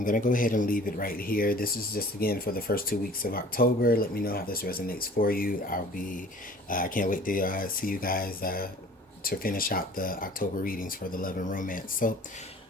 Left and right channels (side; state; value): both; normal; correlation 0.48